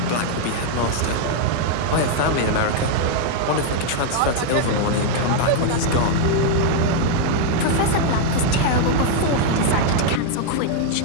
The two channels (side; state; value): both; different; correlation 0.00